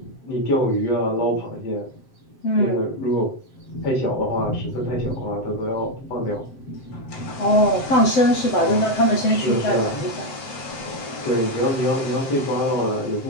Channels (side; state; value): right; late; 7.8 ms